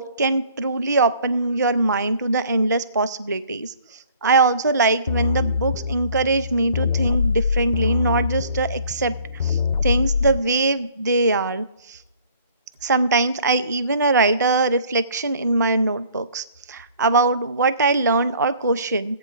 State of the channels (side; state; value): both; inverted; correlation -0.55